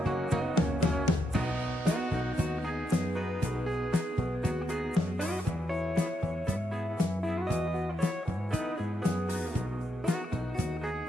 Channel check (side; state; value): both; normal; correlation 0.82